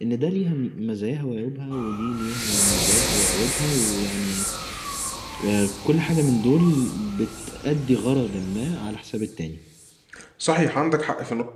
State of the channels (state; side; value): identical; both; correlation 1.00